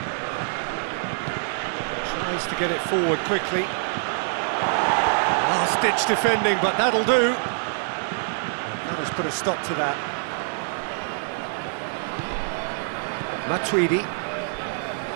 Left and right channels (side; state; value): left; silent; 61 dB below the other